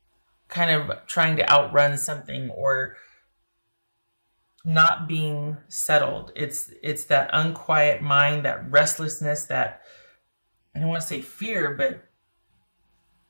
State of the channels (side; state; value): both; inverted; correlation -1.00